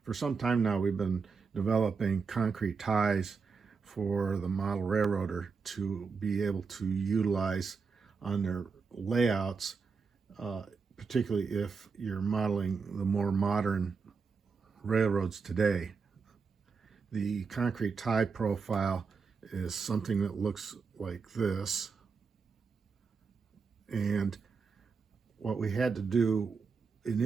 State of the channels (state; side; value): quieter; left; 5.1 dB